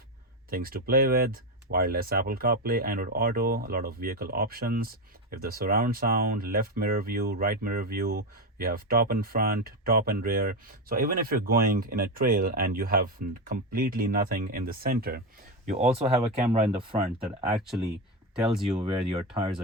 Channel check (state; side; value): normal; both; correlation 0.13